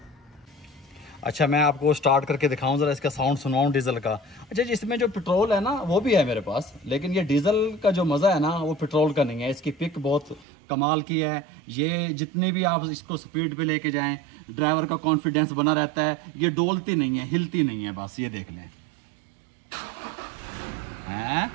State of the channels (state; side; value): drops out; left; at 10.5 s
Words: अच्छा, मैं आपको स्टार्ट करके दिखाऊं, ज़रा इसका साउंड सुनाऊं डीजल का। अच्छा जी, इसमें जो पेट्रोल है ना वो भी है मेरे पास, लेकिन ये डीजल का जो मज़ा है ना वो पेट्रोल का नहीं है। इसकी पिक बहुत कमाल की है। ये जितनी भी आप इसको स्पीड पे लेके जाएं, ड्राइवर का कॉन्फिडेंस बना रहता है। ये डोलती नहीं है, हिलती नहीं है, बस ये देख लें। हैं,